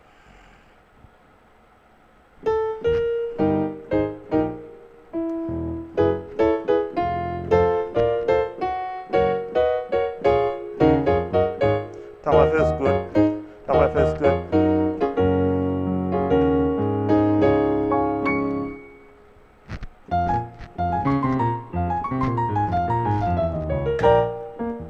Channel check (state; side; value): identical; both; correlation 1.00